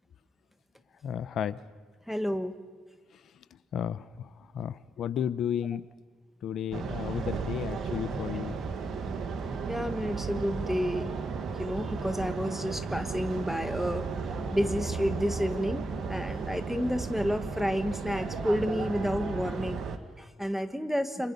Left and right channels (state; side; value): normal; both; correlation 0.84